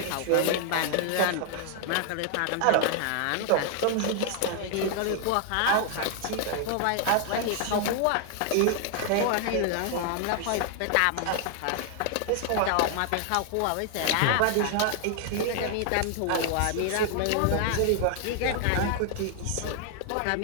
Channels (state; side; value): different; both; correlation 0.00